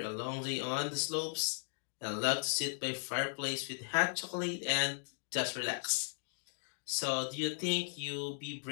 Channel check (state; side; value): silent; right; digital silence